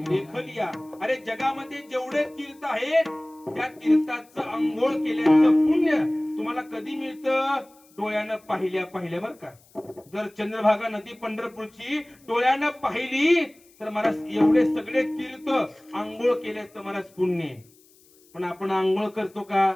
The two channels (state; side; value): noise; left; hiss, 29 dB below the sound